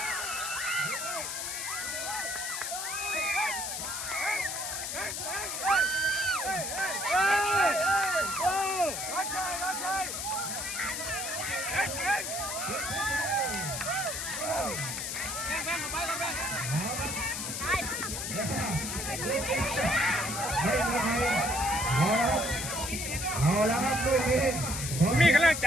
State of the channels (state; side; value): noise; left; hiss, 4 dB below the sound